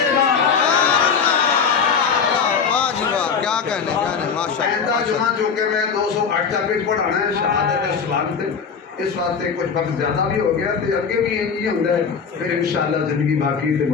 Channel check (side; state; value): right; quieter; 6.1 dB